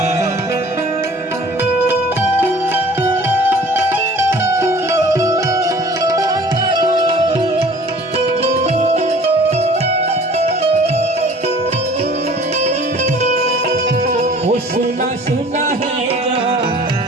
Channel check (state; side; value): normal; both; correlation 0.49